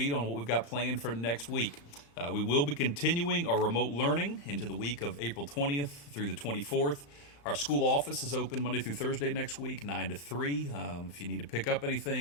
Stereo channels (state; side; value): late; right; 35 ms